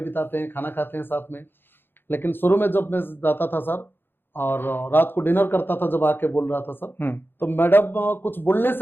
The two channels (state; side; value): late; right; 0.10 ms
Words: बिताते हैं, खाना खाते हैं साथ में। लेकिन शुरू में जब मैं जाता था सर, और रात को डिनर करता था, जब आके बोल रहा था सर, तो मैडम कुछ बोलने